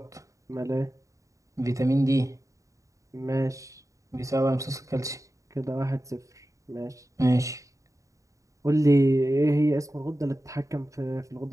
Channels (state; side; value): late; left; 0.16 ms